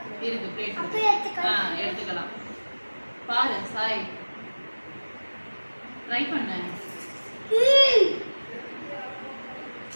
இருக்கு பிளேட். எடுத்துக்கலாம். பாரு சாய், ட்ரை பண்ண.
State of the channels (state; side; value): inverted; both; correlation -1.00